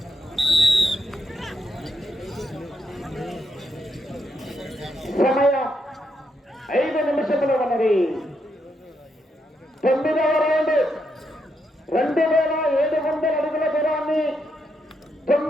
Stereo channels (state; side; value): normal; both; correlation 0.80